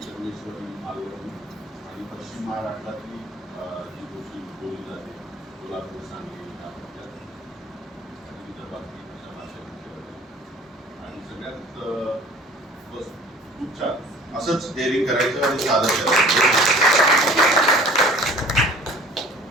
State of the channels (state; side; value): normal; both; correlation 0.48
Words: संगमेश्वरी, मालवणी आणि पश्चिम महाराष्ट्रातली जी गोष्टी बोलली जाते, कोल्हापूर, सांगली, आणि विदर्भातली अशा भाषा. आणि सगळ्यात बस खूप छान असंच डेअरिंग करायचं आणि सादर करायचं.